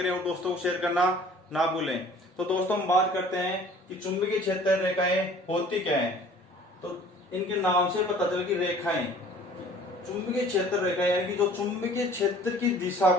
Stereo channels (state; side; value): normal; both; correlation 0.50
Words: और दोस्तों को शेयर करना ना भूलें। तो दोस्तों हम बात करते हैं कि चुंबकीय क्षेत्र रेखाएं होती क्या है। तो इनके नाम से पता चल कि रेखाएं चुंबकीय क्षेत्र रेखा यानी कि जो चुंबकीय क्षेत्र की दिशा